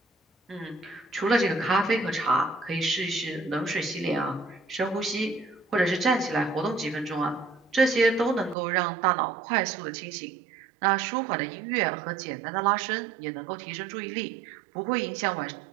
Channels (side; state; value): left; drops out; at 8.6 s